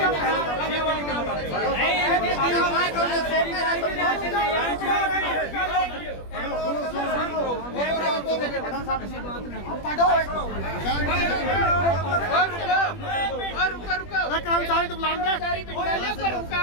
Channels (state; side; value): late; right; 21 ms